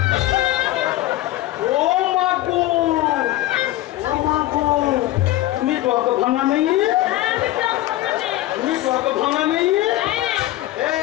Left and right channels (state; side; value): quieter; right; 15.9 dB